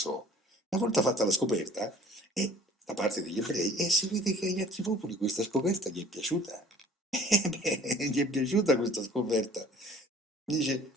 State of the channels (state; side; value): normal; both; correlation 0.50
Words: Una volta fatta la scoperta, da parte degli ebrei, e si vede che agli altri popoli questa scoperta gli è piaciuta. Gli è piaciuta questa scoperta. Dice,